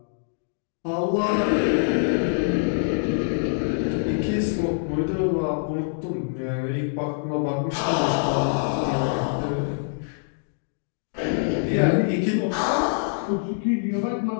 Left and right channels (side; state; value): right; silent; digital silence